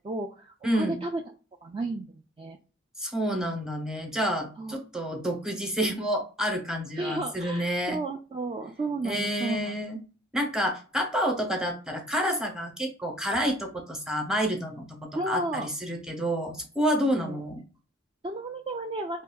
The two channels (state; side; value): normal; both; correlation 0.56